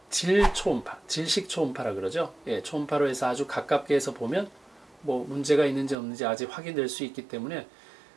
질초음파, 질식초음파라 그러죠. 예, 초음파로 해서 아주 가깝게 해서 보면 뭐 문제가 있는지 없는지 아직 확인될 수 있기 때문에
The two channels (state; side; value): drops out; left; at 6.0 s